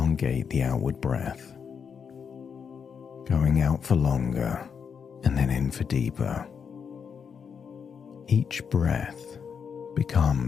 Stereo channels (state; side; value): quieter; right; 6.7 dB